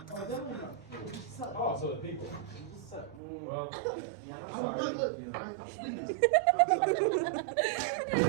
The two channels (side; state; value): left; drops out; at 3.2 s